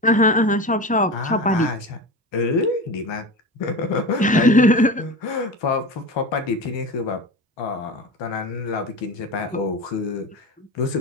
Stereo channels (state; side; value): normal; both; correlation 0.28